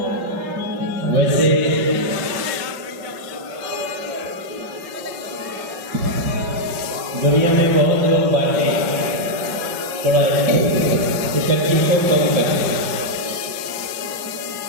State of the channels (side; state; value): left; late; 5.3 ms